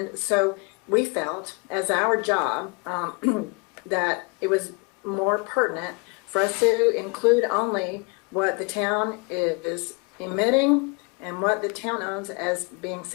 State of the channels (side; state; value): right; quieter; 30.5 dB